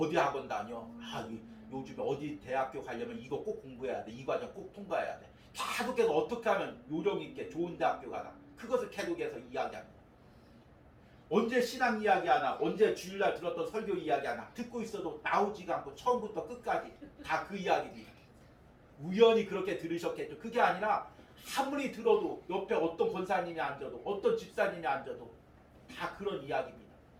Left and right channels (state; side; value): identical; both; correlation 1.00